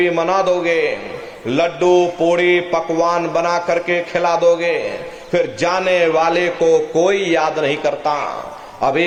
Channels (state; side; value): identical; both; correlation 1.00